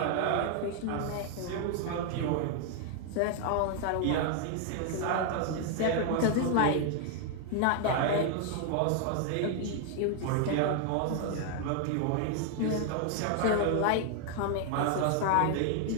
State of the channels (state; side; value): different; both; correlation 0.00